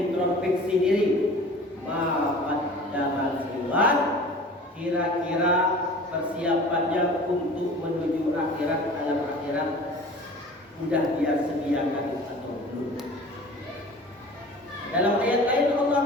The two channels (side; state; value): both; normal; correlation 0.42